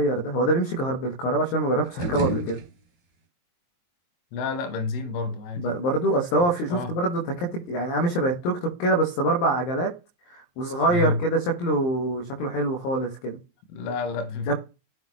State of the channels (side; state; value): right; late; 23 ms